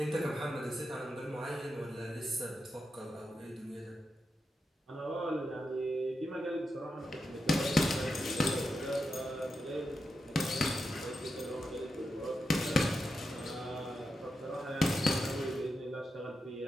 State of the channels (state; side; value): normal; both; correlation 0.88